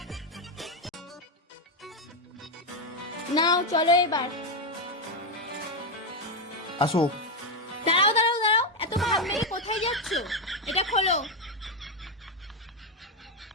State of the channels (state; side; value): normal; both; correlation 0.06